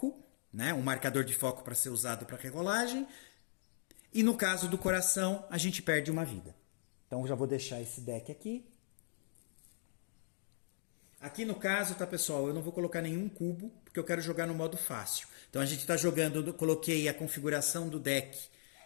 né? Um marcador de foco para ser usado para regolagem. E no caso do coração, a gente perde uma vida. Então, eu já vou deixar esse deck aqui. Aqui no caso, tá, pessoal, eu não vou colocar nenhum cubo, porque eu quero jogar no modo fácil. Então, a gente está jogando, coloquei a configuração do deck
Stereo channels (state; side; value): silent; right; digital silence